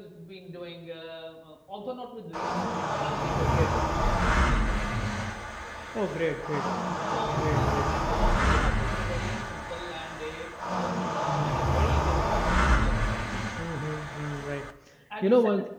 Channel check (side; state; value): both; identical; correlation 1.00